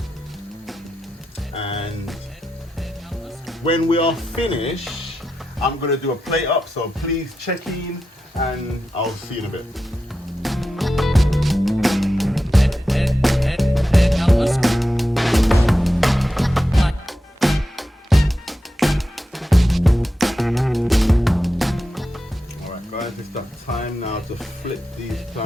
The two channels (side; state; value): both; normal; correlation 0.89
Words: And when we are finished, I'm gonna do a plate up, so please check in and I'll see you in a bit. have to flip these